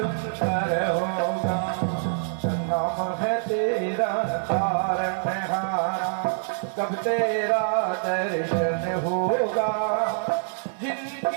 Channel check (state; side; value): silent; left; 61 dB below the other